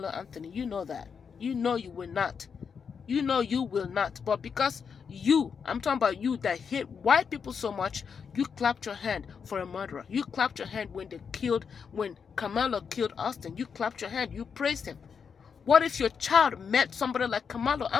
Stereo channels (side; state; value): right; quieter; 6.4 dB